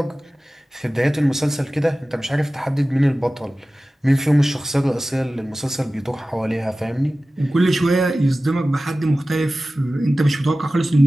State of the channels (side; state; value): both; normal; correlation 0.96